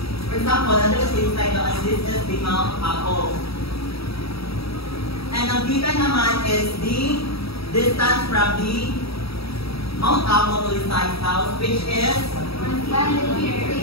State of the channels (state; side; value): late; right; 0.77 ms